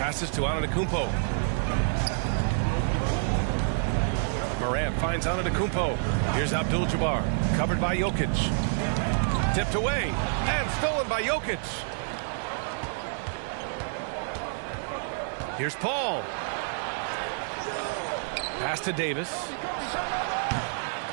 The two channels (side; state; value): left; silent; 59 dB below the other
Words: to Antetokounmpo. Morant finds Antetokounmpo. Here's Abdul-Jabbar, covered by Jokic. Tipped away and stolen by Jokic. Here's Paul. Pass to Davis.